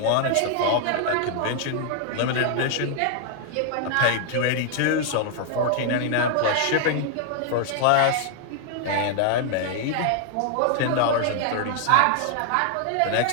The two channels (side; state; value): both; different; correlation 0.00